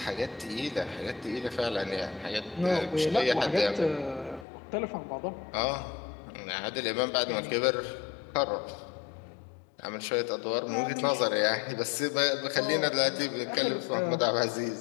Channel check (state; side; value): drops out; right; at 4.5 s